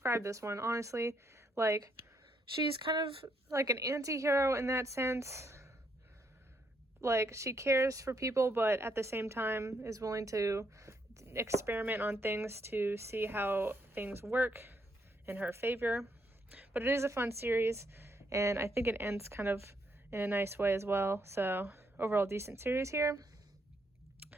this one, honestly. She's kind of like an anti-hero in that sense. She cares for people, but at the same time is willing to experiment on things to see how things work in her favor. But it is a fun series, and I think it ends kind of in a nice way as well. So overall decent series here.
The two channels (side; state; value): both; normal; correlation 0.74